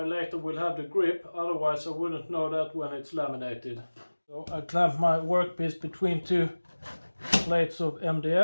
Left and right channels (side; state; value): both; inverted; correlation -1.00